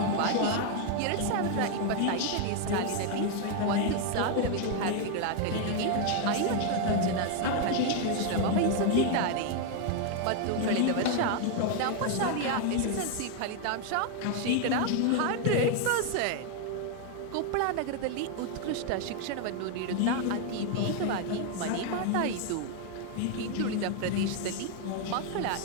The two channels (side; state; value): both; different; correlation 0.00